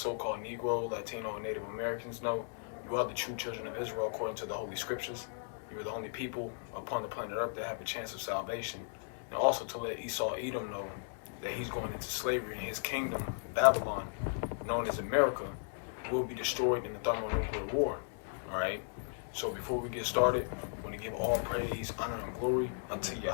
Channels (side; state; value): right; silent; digital silence